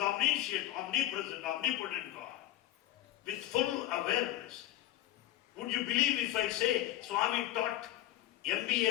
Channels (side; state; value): right; quieter; 13.9 dB